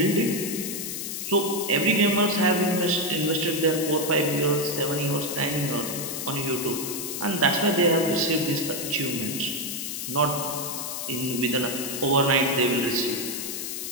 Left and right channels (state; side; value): noise; left; hiss, 5 dB below the sound